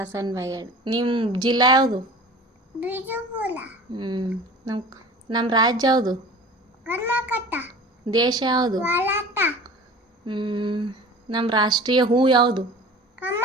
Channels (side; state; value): both; normal; correlation 0.41